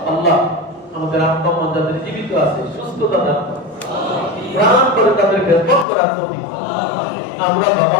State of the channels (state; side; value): drops out; right; at 5.9 s